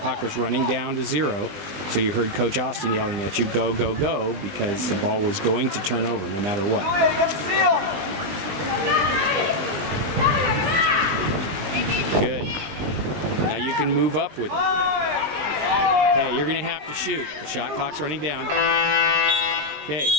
was running down to 0. So you heard Coach Austin yelling at you, go, go, go, because the ball was going to turn over no matter what. Good. Now you can move up with it. Okay, you're going to have to shoot. The shot clock's running down. Okay,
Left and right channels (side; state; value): left; late; 20 ms